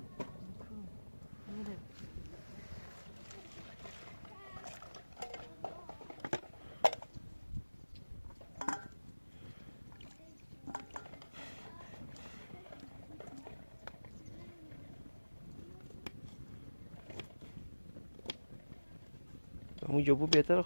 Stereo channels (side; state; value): both; inverted; correlation -1.00